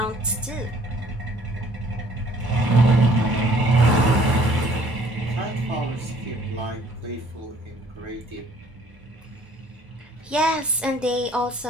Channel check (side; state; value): both; normal; correlation 0.58